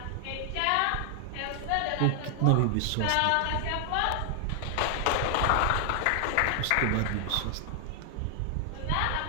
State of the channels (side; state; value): both; different; correlation 0.00